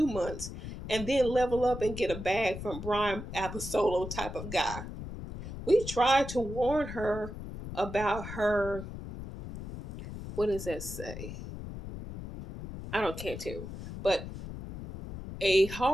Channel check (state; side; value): noise; left; rumble, 9 dB below the sound